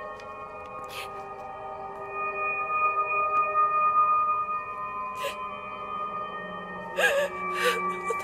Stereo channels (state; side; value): identical; both; correlation 1.00